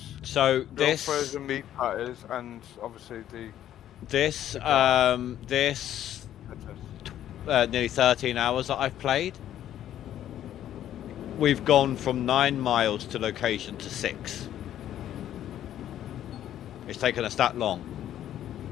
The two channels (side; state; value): right; quieter; 11.5 dB